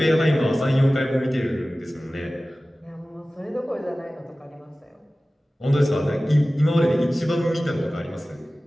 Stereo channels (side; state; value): both; normal; correlation 0.97